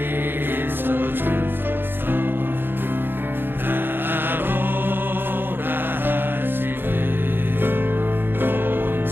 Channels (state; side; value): late; left; 0.10 ms